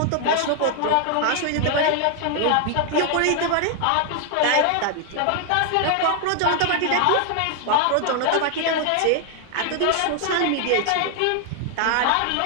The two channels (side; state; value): both; different; correlation 0.00